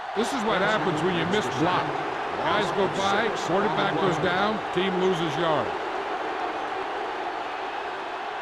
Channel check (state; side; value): identical; both; correlation 1.00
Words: This is what happens when you miss block. Guys go by, quarterback goes down, team loses yard.